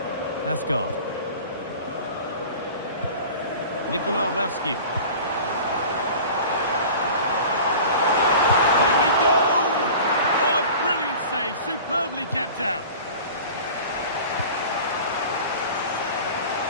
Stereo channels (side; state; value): both; inverted; correlation -0.40